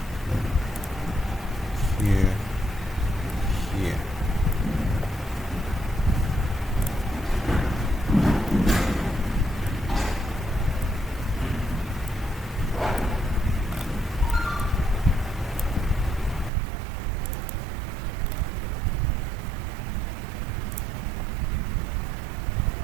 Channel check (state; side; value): drops out; left; at 16.5 s